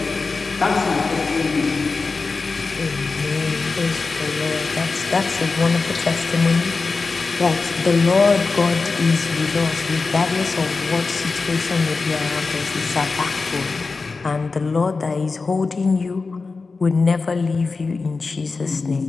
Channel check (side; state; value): right; quieter; 4.2 dB